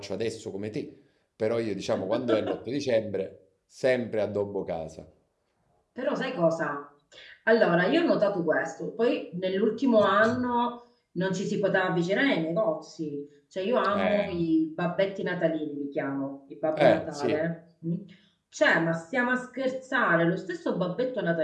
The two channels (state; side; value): identical; both; correlation 1.00